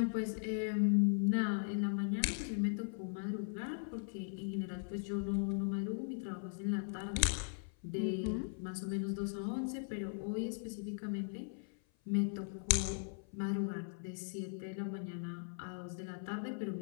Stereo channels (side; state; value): right; silent; 52 dB below the other